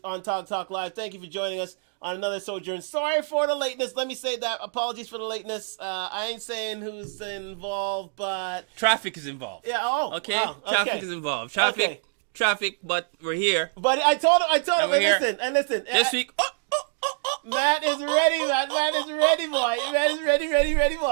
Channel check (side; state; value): left; silent; digital silence